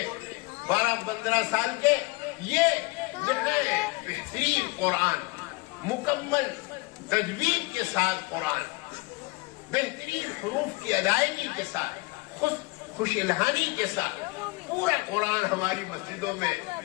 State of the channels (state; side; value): quieter; right; 25.2 dB